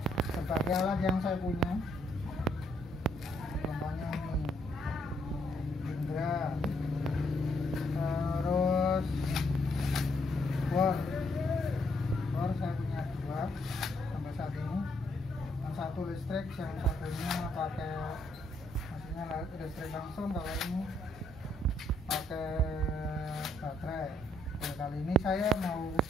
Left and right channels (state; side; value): normal; both; correlation 0.72